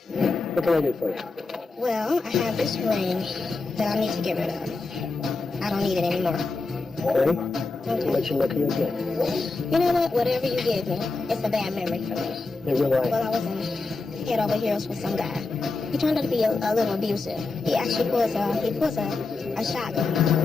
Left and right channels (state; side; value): quieter; right; 3.6 dB